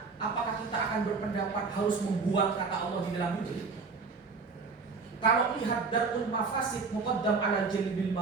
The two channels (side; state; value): left; quieter; 4.6 dB